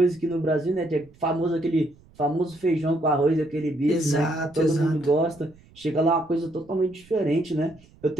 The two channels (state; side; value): noise; right; rumble, 27 dB below the sound